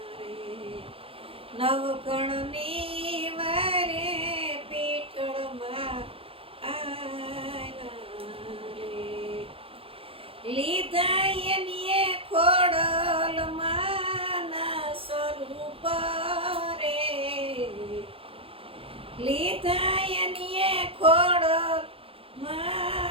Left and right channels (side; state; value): left; late; 0.27 ms